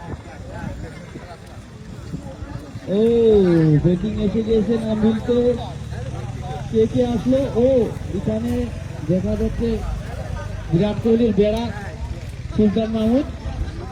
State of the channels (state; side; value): identical; both; correlation 1.00